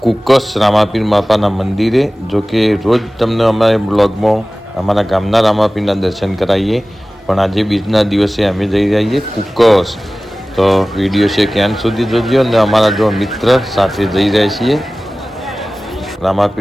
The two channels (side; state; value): both; normal; correlation 0.97